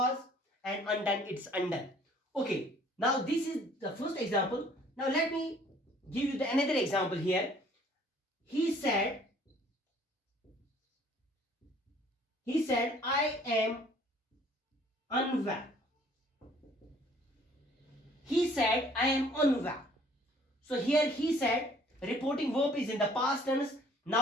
and undone, it's undone. Okay, now this is the first example. Now let me give you another example here. He said I am unwell. He said I am unwell. So here he said, reporting verb is in the past tense.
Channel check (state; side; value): normal; both; correlation 0.57